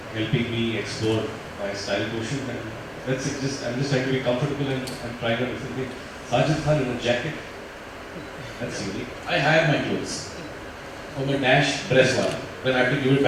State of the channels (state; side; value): identical; both; correlation 1.00